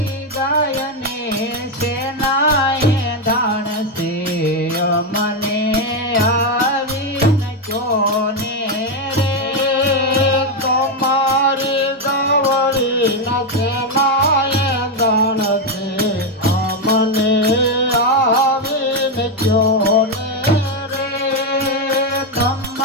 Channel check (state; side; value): normal; both; correlation 0.05